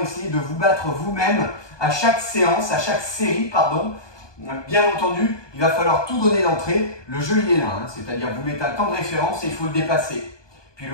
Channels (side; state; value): right; late; 1.2 ms